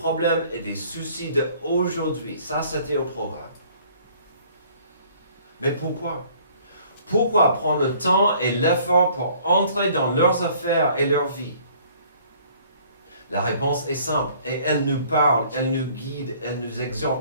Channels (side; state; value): both; inverted; correlation -0.56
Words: et des soucis d'aujourd'hui. Ça, c'était au programme. Mais pourquoi? Pourquoi prendre le temps et l'effort pour entrer dans leurs affaires et leur vie? La réponse est simple et elle nous parle, elle nous guide, elle nous